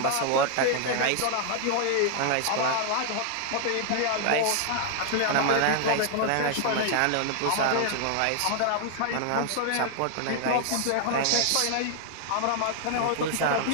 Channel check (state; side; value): different; both; correlation 0.00